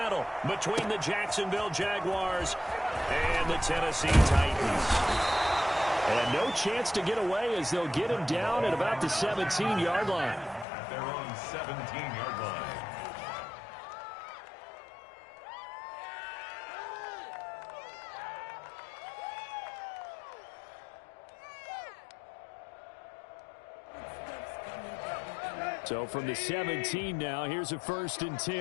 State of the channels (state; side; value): drops out; right; at 10.7 s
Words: between the Jacksonville Jaguars and the Tennessee Titans. And no chance to get away as they'll get him down at about the 17-yard line. They're on 17-yard line. So from the 17 now, here's a 1st and